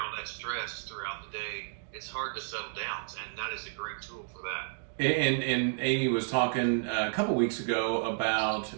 all that stress throughout the day, it's hard to settle down, and that is a great tool for that. And Amy was talking a couple weeks ago about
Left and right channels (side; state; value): left; silent; digital silence